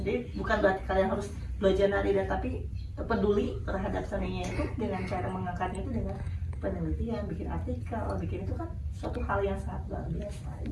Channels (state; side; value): identical; both; correlation 1.00